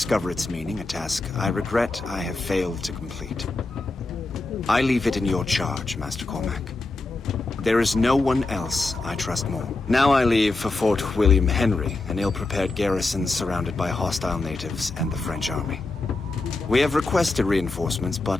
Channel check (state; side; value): quieter; right; 3.3 dB